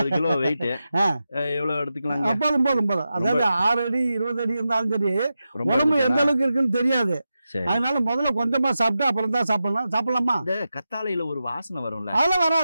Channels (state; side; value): inverted; both; correlation -0.91